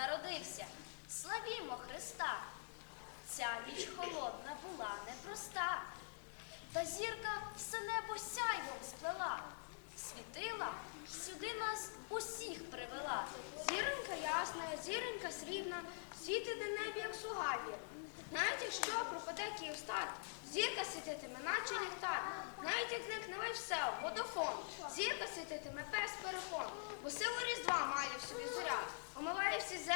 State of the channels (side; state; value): right; silent; digital silence